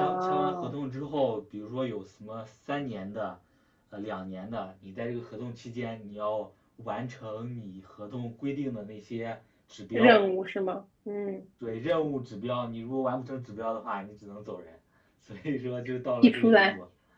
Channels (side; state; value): both; identical; correlation 1.00